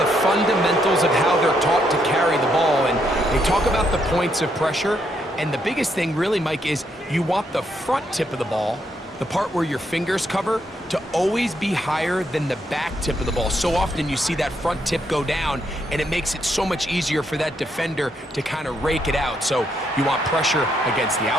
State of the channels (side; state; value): both; normal; correlation 0.76